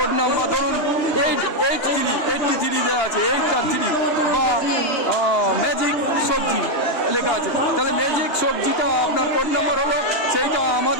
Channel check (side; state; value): right; late; 2.8 ms